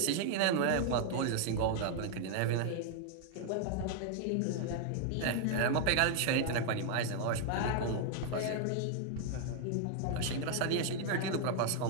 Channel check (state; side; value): different; both; correlation 0.00